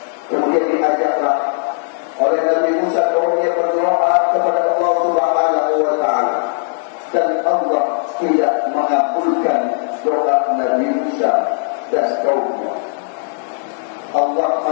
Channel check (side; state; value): right; silent; digital silence